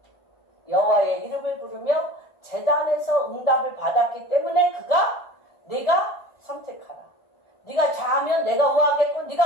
여호와의 이름을 부르며 제단에서 응답을 받았기 때문에 그가 네가 선택하라. 네가 좌하면 내가 우하겠고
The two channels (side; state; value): right; late; 1.4 ms